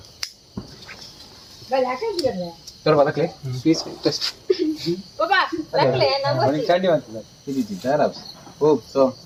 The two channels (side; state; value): both; identical; correlation 1.00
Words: ತೋರ ಬದಕ್ಲೆ ಪೀಸ್ ಟೆಸ್ಟ್ ಚಂಡಿ ಮಾಡ್ತಿದ್ದ ಇದಿದ್ದಾರ ಓ ಸೊ